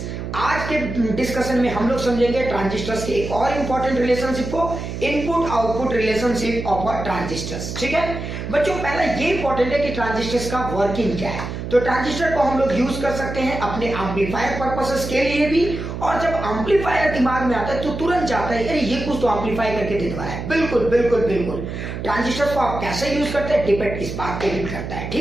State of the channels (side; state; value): right; noise; hum, 6 dB below the sound